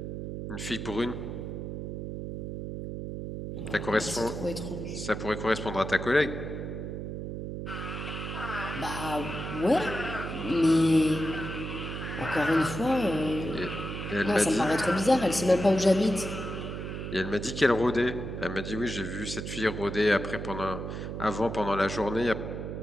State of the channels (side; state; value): right; noise; hum, 6 dB below the sound